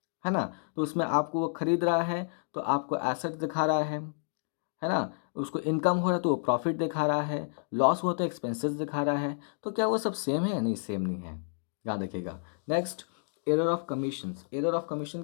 ना। तो उसमें आपको वो खरीद रहा है तो आपको एसेट दिखा रहा है ना। उसको इनकम हो रहा है तो वो प्रॉफिट दिखा रहा है, लॉस हुआ तो एक्सपेंसेस दिखा रहा है। तो क्या वो सब सेम है, नहीं सेम नहीं है, याद रखिएगा। Next, error of commissions. Error of commission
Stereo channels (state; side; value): silent; right; digital silence